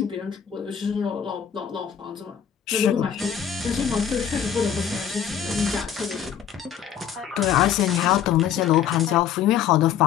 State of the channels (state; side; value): quieter; right; 8.8 dB